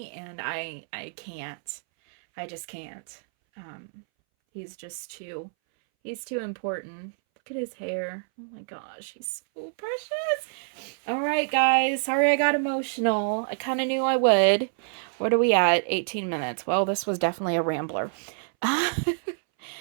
and I can't. I just can't. Um, he's just he's too important. Look at his hair. Oh my gosh, he's so precious. All right, guys. Sorry I got emotional. I kind of knew I would. What are we at? 18 minutes. Well, this was definitely a rambler.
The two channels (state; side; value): silent; left; 60 dB below the other